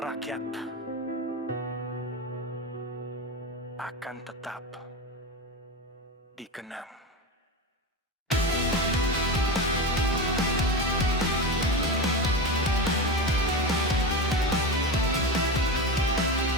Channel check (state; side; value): normal; both; correlation 0.21